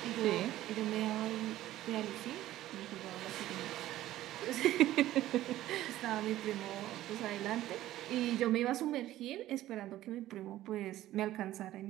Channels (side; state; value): left; quieter; 14.5 dB